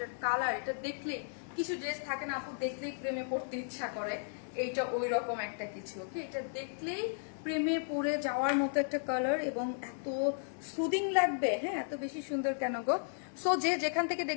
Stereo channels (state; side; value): silent; right; 55 dB below the other